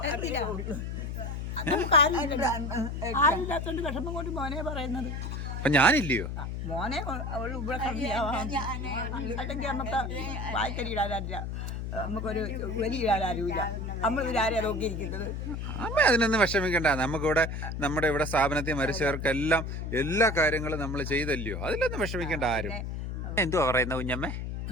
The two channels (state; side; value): noise; left; hum, 4 dB below the sound